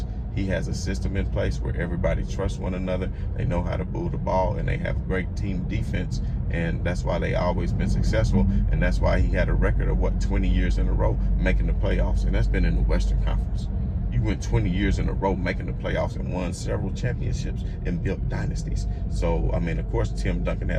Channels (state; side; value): identical; both; correlation 1.00